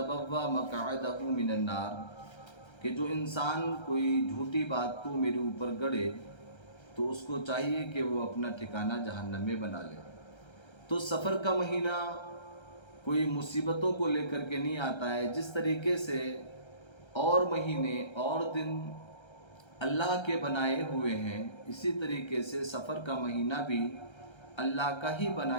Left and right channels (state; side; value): late; right; 1.3 ms